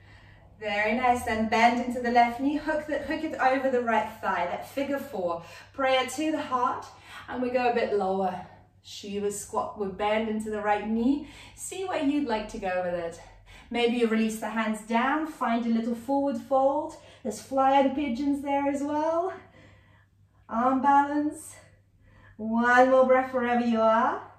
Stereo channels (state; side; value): identical; both; correlation 1.00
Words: Very nice. Then bend into the left knee. Hook it over the right thigh. That figure four. Prayer to the heart. And we go a bit lower. Shiva squat. We bend into the right knee. See where you'd like to go with it. Maybe you release the hands down. Find a little forward fold. There's flying pigeons there as well. Arm balance. One more breath wherever you are.